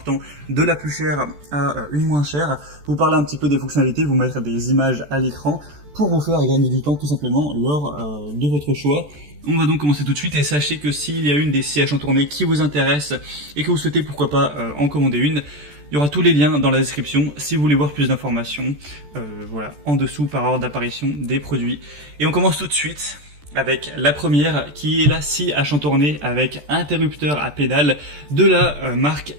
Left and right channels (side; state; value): left; late; 14 ms